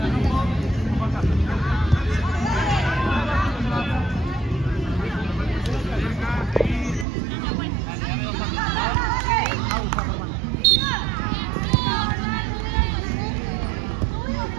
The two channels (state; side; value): drops out; left; at 7.1 s